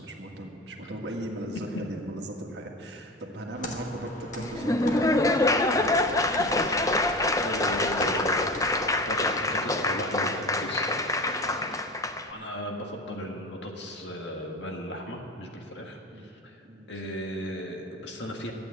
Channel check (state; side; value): normal; both; correlation 0.30